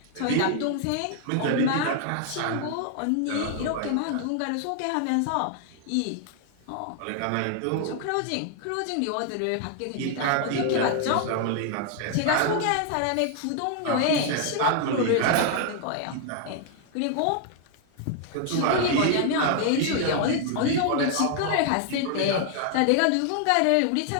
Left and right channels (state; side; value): different; both; correlation 0.00